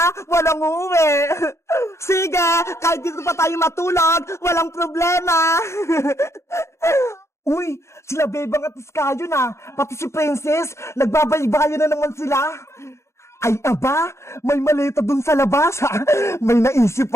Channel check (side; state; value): right; late; 0.13 ms